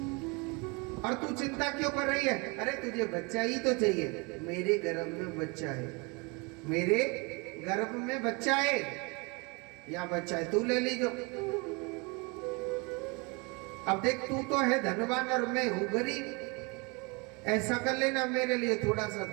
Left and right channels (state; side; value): quieter; left; 29.6 dB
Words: और तू चिंता क्यों कर रही है? अरे तुझे बच्चा ही तो चाहिए। मेरे गर्भ में बच्चा है, मेरे गर्भ में बच्चा है, या बच्चा है तू ले लीजो। अब देख, तू तो है धनवान और मैं हूं गरीब, ऐसा कर लेना, मेरे लिए थोड़ा सा